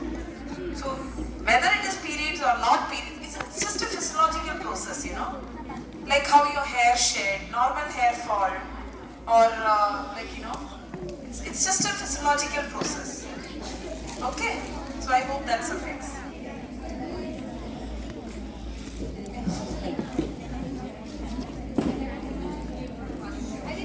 So, whether it is periods or not periods, it's just a physiological process, like how your hair shed, normal hair fall, or it's just a physiological process. Okay, so I hope that suffices.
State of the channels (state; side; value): identical; both; correlation 1.00